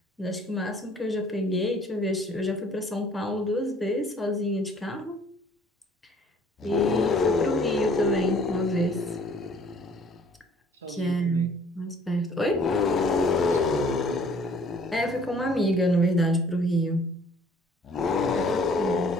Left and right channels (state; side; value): normal; both; correlation 0.56